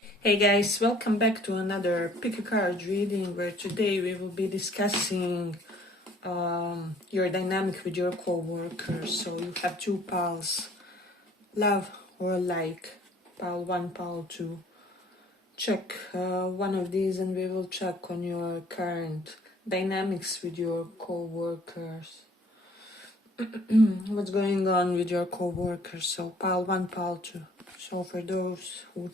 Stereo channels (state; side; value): normal; both; correlation 0.56